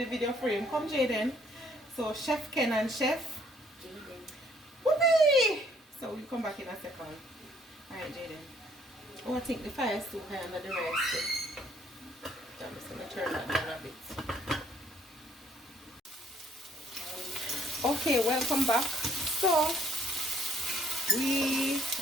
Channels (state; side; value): normal; both; correlation 0.65